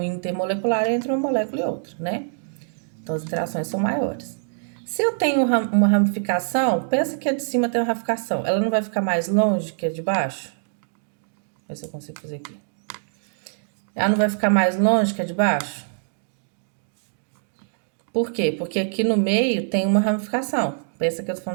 intermolecular é entre uma molécula e outra, né? Então as interações são maiores. Se eu tenho uma ramificação, pensa que a de cima tem uma ramificação, ela não vai ficar mais longe que a de baixo? Vê se eu consigo fazer aqui. Ela não vai ficar mais longe que a de baixo? Por quê? Porque aqui no meio tem uma ramificação. Pensa que eu tô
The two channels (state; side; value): silent; left; digital silence